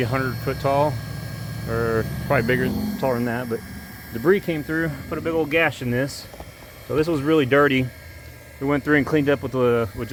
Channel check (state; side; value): identical; both; correlation 1.00